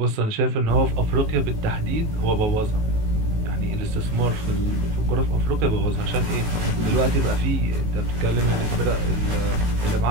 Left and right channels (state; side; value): late; left; 18 ms